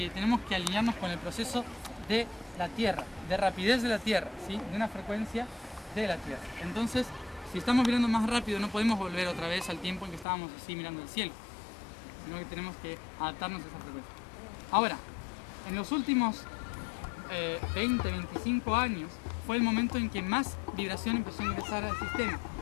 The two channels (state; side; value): drops out; right; at 10.2 s